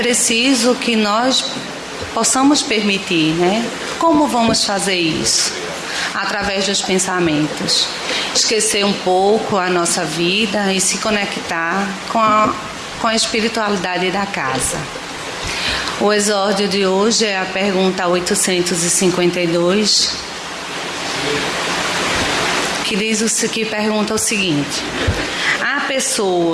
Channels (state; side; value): identical; both; correlation 1.00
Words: que nós possamos permitir, né? Como vamos fazer isso? Através dos pensamentos. Esquecer um pouco a nossa vida e se conectar com a espiritualidade da casa. O exórdio de hoje é a pergunta 852, que pergunta o seguinte: há